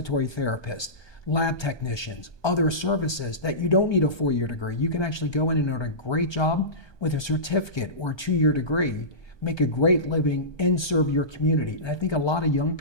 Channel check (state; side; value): late; right; 1.2 ms